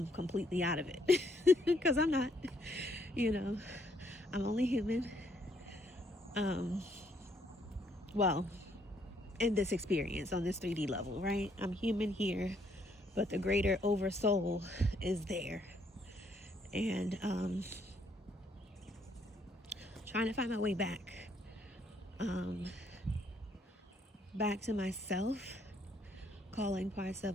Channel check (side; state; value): both; normal; correlation 0.70